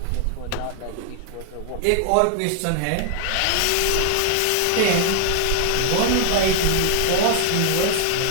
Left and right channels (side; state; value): both; different; correlation 0.00